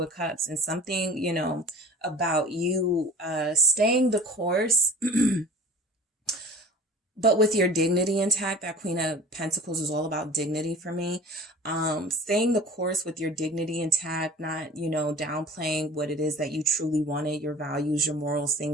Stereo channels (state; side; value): normal; both; correlation 0.42